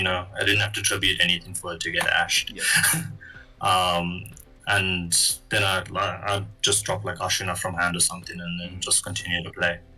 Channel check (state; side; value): identical; both; correlation 1.00